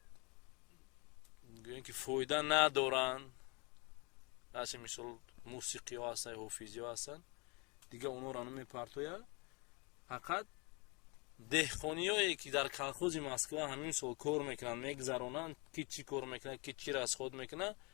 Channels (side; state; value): right; quieter; 29.6 dB